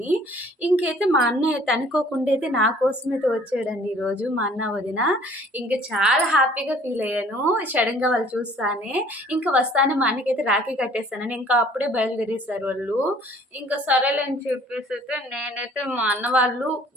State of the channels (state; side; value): normal; both; correlation 0.54